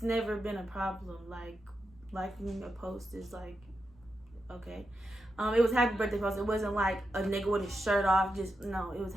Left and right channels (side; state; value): both; normal; correlation 0.87